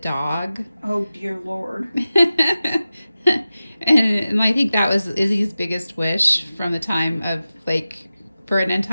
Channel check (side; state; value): both; inverted; correlation -0.94